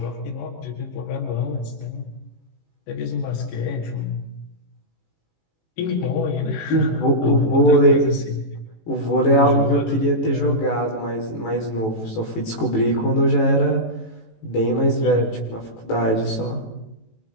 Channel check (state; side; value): late; right; 18 ms